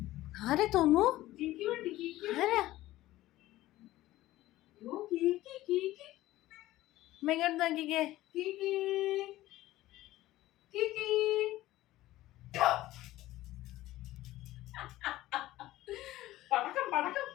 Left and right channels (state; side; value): quieter; right; 16.1 dB